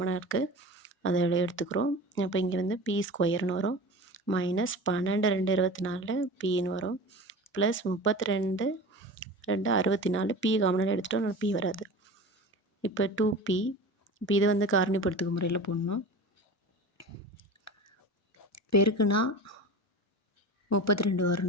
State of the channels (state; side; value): normal; both; correlation 0.33